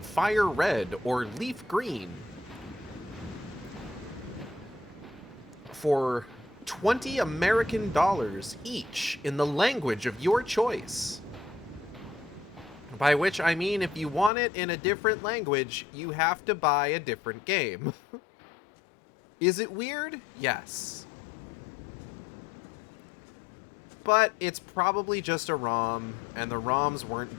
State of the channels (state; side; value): drops out; right; at 14.3 s